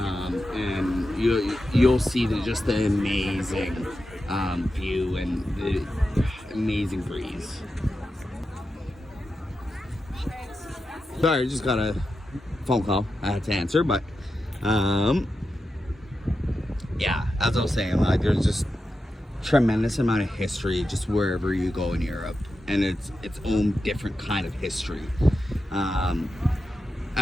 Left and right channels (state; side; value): normal; both; correlation 0.90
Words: you'll see just the amazing view and the amazing breeze. Sorry, I just got a phone call I had to answer, but yeah, as I was saying, like there's just tremendous amount of history just wherever you go in Europe, and it's its own different kind of history.